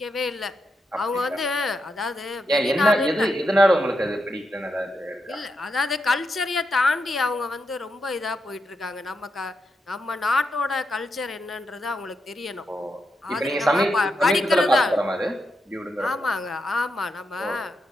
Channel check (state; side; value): normal; both; correlation 0.84